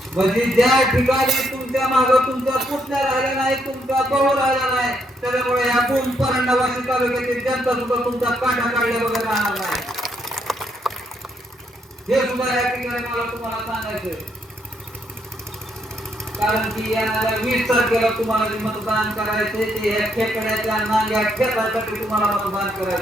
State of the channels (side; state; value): both; normal; correlation 0.75